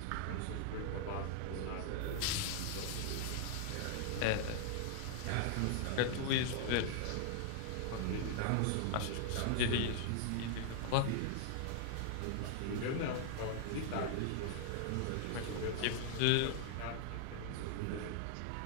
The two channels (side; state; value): both; different; correlation 0.00